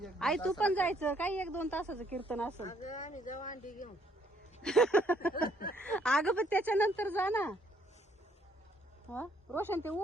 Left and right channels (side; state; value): both; normal; correlation 0.67